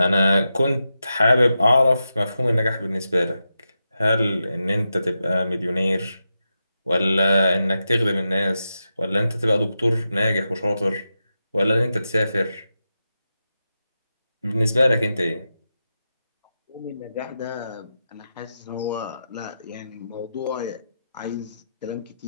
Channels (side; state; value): both; inverted; correlation -0.89